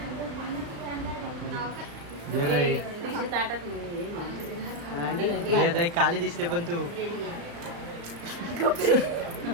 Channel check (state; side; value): late; left; 35 ms